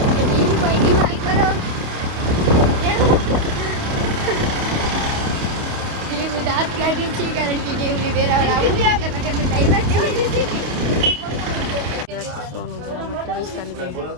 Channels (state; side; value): late; left; 28 ms